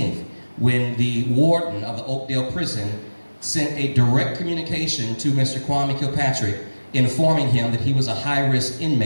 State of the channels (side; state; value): both; inverted; correlation -1.00